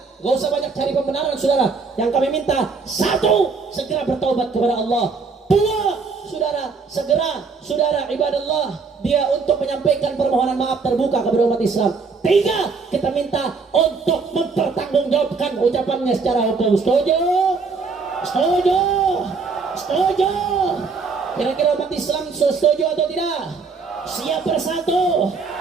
nggak usah banyak cari pembenaran, saudara. Yang kami minta, satu, segera bertaubat kepada Allah. Dua, saudara, segera, saudara ibadallah, dia untuk menyampaikan permohonan maaf terbuka kepada umat Islam. Tiga, kita minta untuk mempertanggungjawabkan ucapannya secara hukum. Setuju? Setuju? Setuju? Kira-kira umat Islam setuju atau tidak? Siap bersatu,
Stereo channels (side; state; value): left; quieter; 4.7 dB